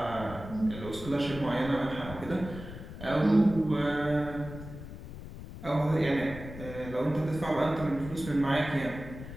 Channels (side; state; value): left; noise; rumble, 12 dB below the sound